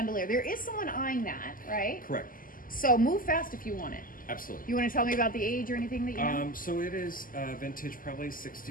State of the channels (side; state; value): right; late; 0.41 ms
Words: There is someone eyeing that, right? Correct. So move fast if you want it. Absolutely. You want to tell me about the age or anything that you know? So it is vintage, probably